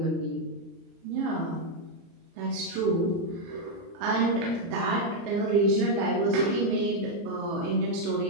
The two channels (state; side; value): late; left; 30 ms